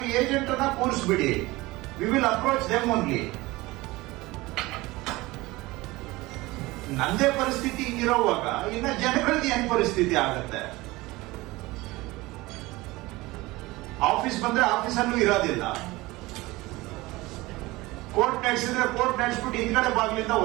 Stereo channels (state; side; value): quieter; left; 20.6 dB